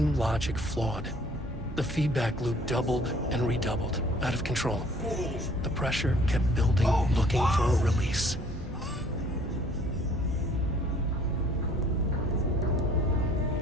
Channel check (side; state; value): both; normal; correlation 0.56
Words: logic flawed. The feedback loop doubled and redoubled, out of control. The pressure kept building, looking for a release.